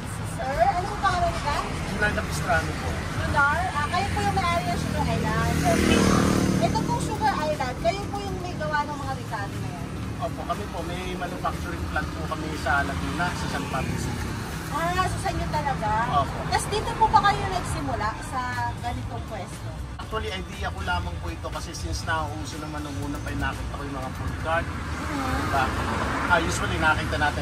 Sir. Ano po pangalan nila? Junar Capistrano po. Junar? Kayo po yung may-ari ng Sugar Island. Okay. Ito pong Sugar Island, kayo po yung may gawa ng mga Ricardo na yan? Opo, kami po. May manufacturing plant po kami sa Laguna, sa San Pablo City. So sa inyo talaga? Opo. Tapos dito po ba kayo nagsimula sa ganitong pwesto? Actually, idea ko lamang po ito kasi since nauuso naman nung una pa nakita ko yung mga food cart. Diba? Usually nakita natin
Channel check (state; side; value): identical; both; correlation 1.00